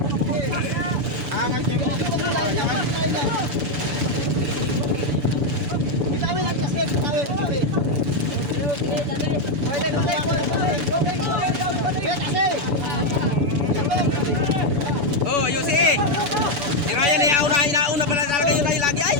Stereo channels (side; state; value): left; late; 7.0 ms